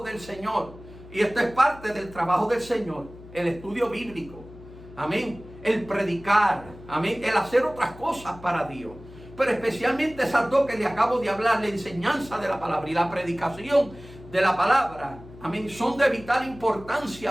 del Señor. Y esto es parte del trabajo del Señor, el estudio bíblico, amén, el predicar, amén, el hacer otras cosas para Dios. Pero especialmente esas dos que le acabo de hablar, la enseñanza de la palabra y la predicación de la palabra, amén, son de vital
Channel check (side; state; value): left; noise; hum, 18 dB below the sound